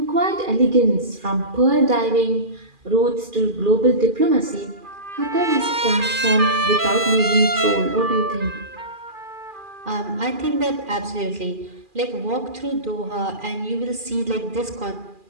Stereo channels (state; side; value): late; left; 2.4 ms